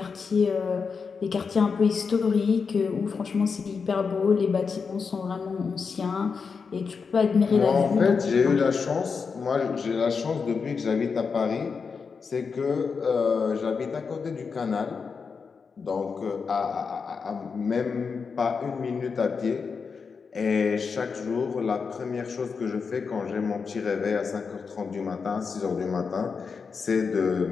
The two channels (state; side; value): quieter; right; 5.4 dB